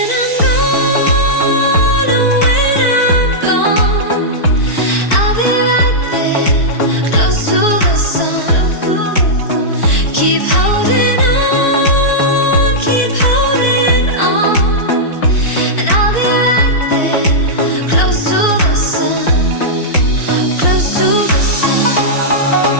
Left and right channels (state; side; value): late; right; 4.5 ms